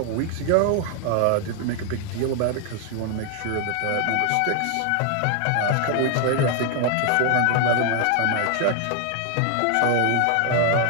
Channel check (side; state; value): both; different; correlation 0.00